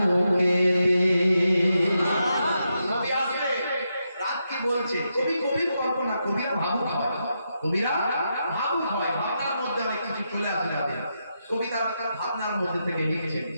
নবী আসবে রাত কি বলছে কবি কল্পনা কবিরা ভাবুক হয় ভাবনার মধ্যে অনেক কিছু চলে আসে যাবে কবিতার ভাবনার মধ্যে থেকে লিখছে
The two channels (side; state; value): both; inverted; correlation -0.84